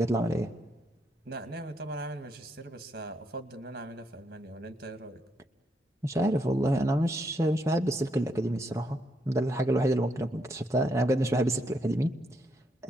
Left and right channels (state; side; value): normal; both; correlation 0.77